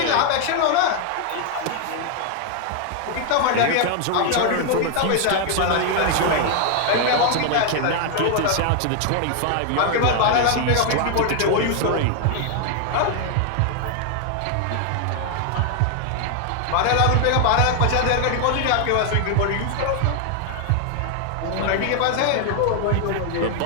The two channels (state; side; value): different; both; correlation 0.00